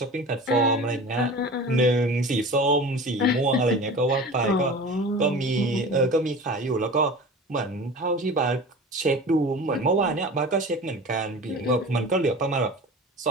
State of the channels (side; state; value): both; normal; correlation 0.36